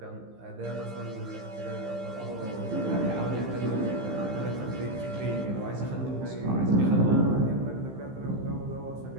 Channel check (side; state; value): left; late; 15 ms